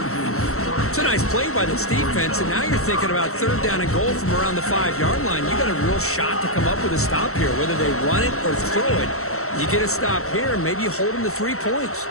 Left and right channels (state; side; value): late; right; 0.63 ms